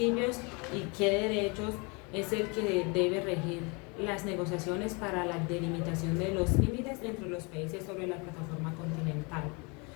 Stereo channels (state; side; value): quieter; right; 30.4 dB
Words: y qué derechos es el que debe regir las negociaciones para la delimitación de los límites entre los países sobre la plataforma continental.